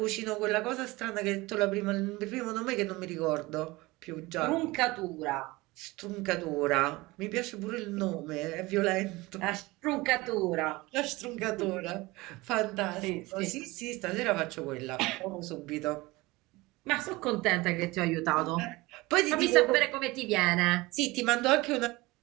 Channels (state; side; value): quieter; left; 21.5 dB